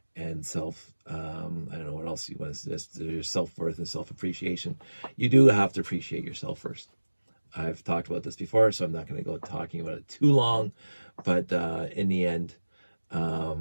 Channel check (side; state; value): both; inverted; correlation -1.00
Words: and self I don't know what else you want to suggest. Your self-worth and self-appreciation. You do have to appreciate yourself first. I've talked about this before, so I'm not going to go talking about it too long, but in the end,